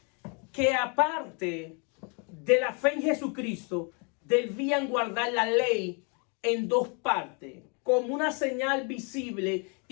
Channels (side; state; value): right; quieter; 36.0 dB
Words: que aparte de la fe en Jesucristo, debían guardar la ley en dos partes, como una señal visible